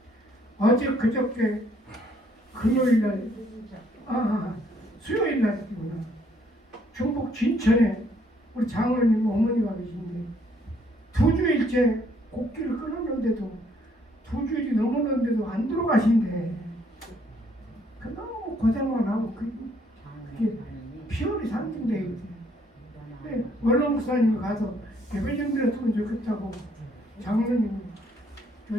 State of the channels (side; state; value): both; normal; correlation 0.67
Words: 어제 그저께 금요일날 수요일날이구나. 중북 진천에 우리 장로님 어머니가 계신데 2주일째 곡기를 끊었는데도 2주일이 넘었는데도 안 들어가신대. 그 너무 고생만 하고 그게 피월이 상징돼 있지. 원로 목사님이 가서 예배 좀 드렸으면 좋겠다고 장로님